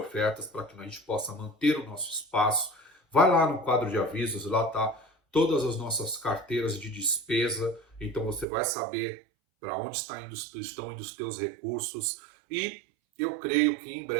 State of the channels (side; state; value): left; drops out; at 8.5 s